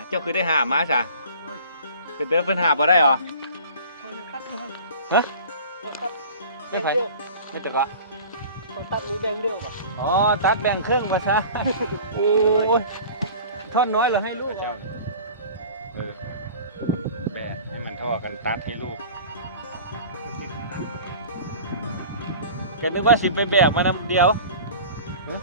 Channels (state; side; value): inverted; both; correlation -0.42